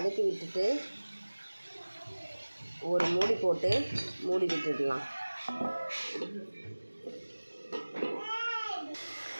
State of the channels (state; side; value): inverted; both; correlation -1.00